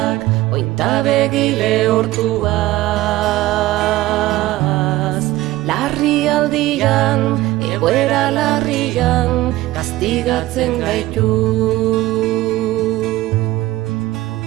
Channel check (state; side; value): quieter; left; 17.1 dB